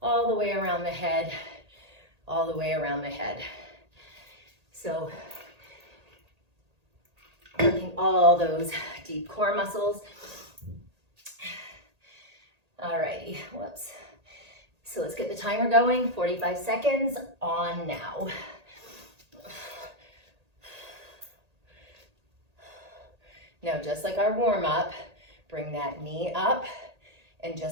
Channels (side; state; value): left; late; 1.8 ms